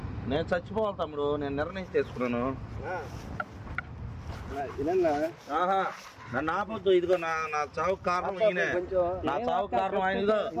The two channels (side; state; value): both; identical; correlation 1.00